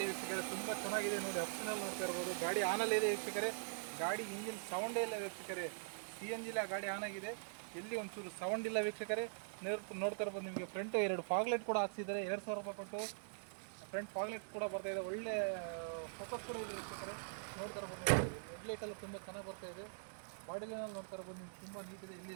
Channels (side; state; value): left; silent; digital silence